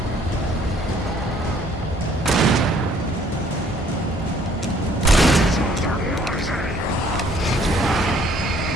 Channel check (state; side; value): normal; both; correlation 0.61